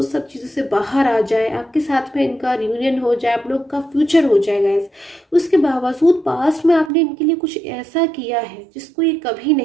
सब चीज़ों से बाहर आ जाए, आपके साथ में इनका रियूनियन हो जाए, आप लोग का फ्यूचर हो जाए गाइस, उसके बावजूद पास्ट में आपने इनके लिए कुछ ऐसा किया है जिसको ये कभी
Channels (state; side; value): drops out; left; at 6.9 s